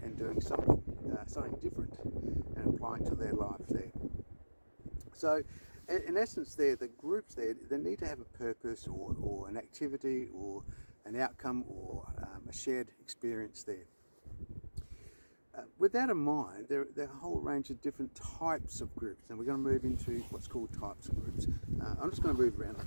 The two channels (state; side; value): inverted; both; correlation -1.00